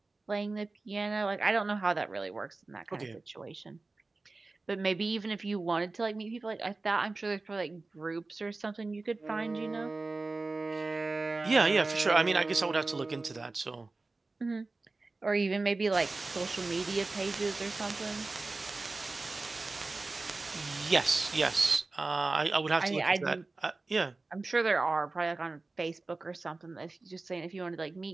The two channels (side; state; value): left; quieter; 3.4 dB